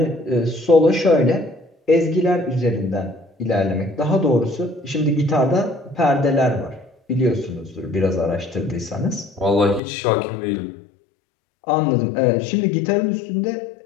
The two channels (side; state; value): right; drops out; at 9.8 s